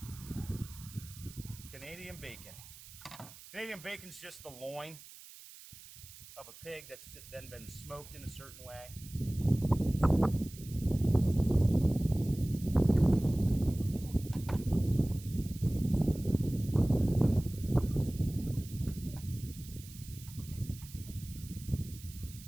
Canadian bacon. Canadian bacon's just the loin of a pig that's then been smoked in a certain way.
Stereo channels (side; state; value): right; noise; hiss, 18 dB below the sound